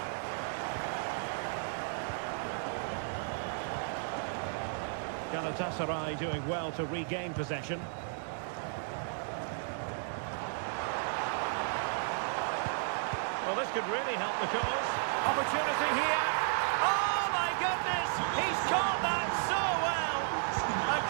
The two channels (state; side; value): silent; left; digital silence